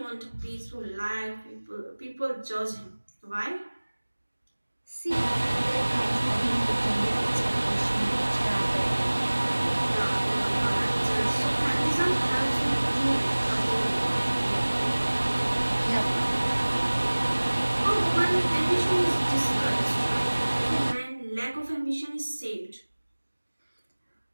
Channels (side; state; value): both; inverted; correlation -1.00